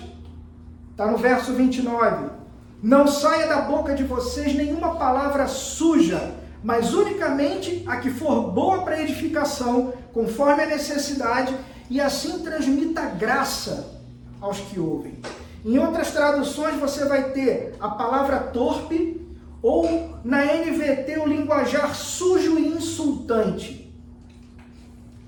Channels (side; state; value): both; identical; correlation 1.00